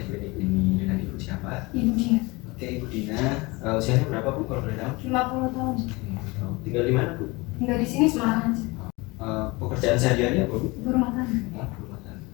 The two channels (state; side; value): quieter; right; 24.3 dB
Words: klinik ini. Dengan Ibu siapa? Ibu Dina. Oke, Ibu Dina. Usianya berapa, Bu, kalau boleh tahu? 50 tahun. Tinggal di mana, Bu? Tinggal di sini Semarang aja. Pekerjaan sehari-hari apa, Bu? Ibu rumah tangga. Ibu rumah tangga.